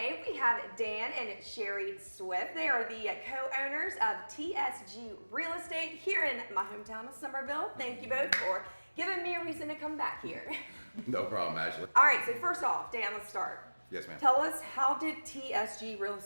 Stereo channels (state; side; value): inverted; both; correlation -1.00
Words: we have Dan and Sherry Swift. They are the co-owners of TSG Real Estate here in my hometown of Somerville. Thank you both for giving me a reason to come back here. No problem, Ashley. All right, so first off, Dan, let's start. Yes, ma'am. Tell us, how did TSG Real